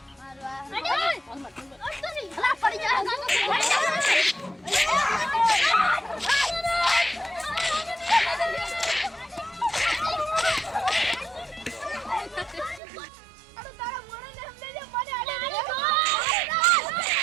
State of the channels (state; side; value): drops out; left; at 12.8 s